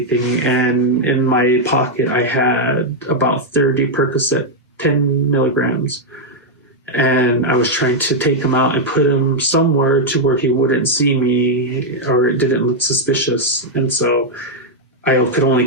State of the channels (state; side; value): normal; both; correlation -0.02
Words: And in my pocket, I had about 30 Percocet, 10 milligrams. And I was trying to take him out and put him somewhere to where he wouldn't see me, or it didn't look suspicious. And so I could only